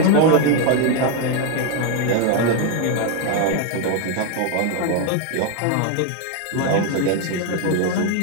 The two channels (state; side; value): different; both; correlation 0.01